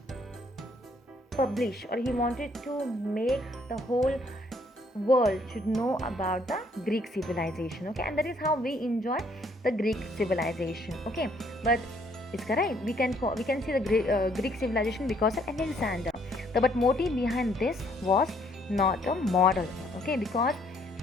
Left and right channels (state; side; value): normal; both; correlation 0.66